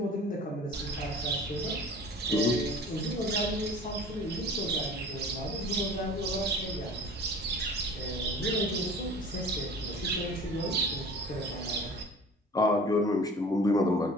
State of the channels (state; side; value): normal; both; correlation 0.42